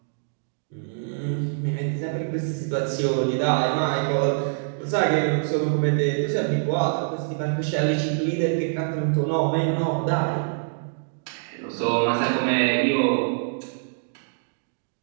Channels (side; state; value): left; silent; digital silence